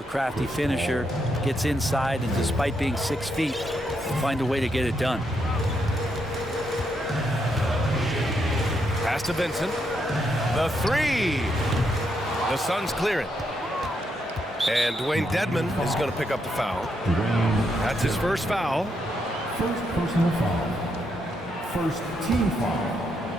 crafty finisher, gets inside, and despite being 6 feet, find a way to get it done. Pass to Vincent. The three. The Suns clear it. And Dwayne Dedman is going to pick up the foul. That's his first foul. First personal foul. First team foul.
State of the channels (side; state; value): both; normal; correlation 0.79